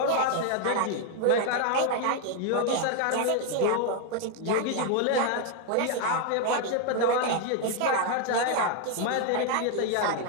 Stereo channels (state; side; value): different; both; correlation 0.01